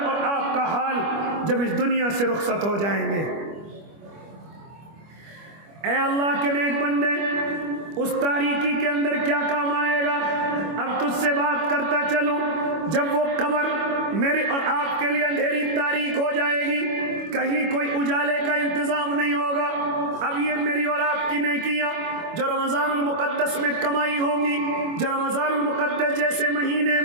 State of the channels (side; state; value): left; late; 25 ms